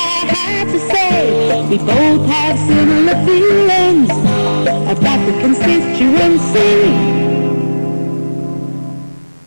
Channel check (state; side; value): inverted; both; correlation -1.00